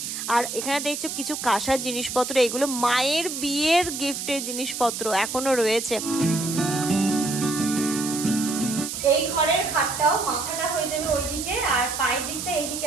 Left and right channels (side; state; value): right; noise; hiss, 5 dB below the sound